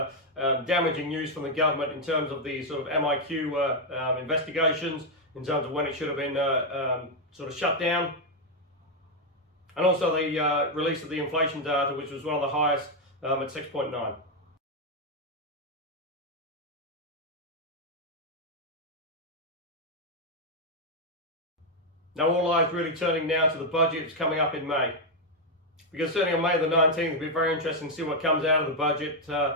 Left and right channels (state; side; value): normal; both; correlation 0.02